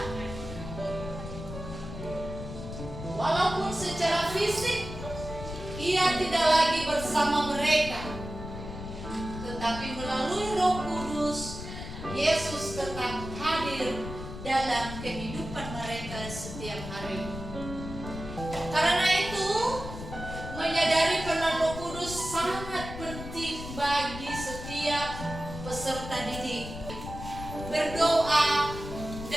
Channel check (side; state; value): left; noise; rumble, 9 dB below the sound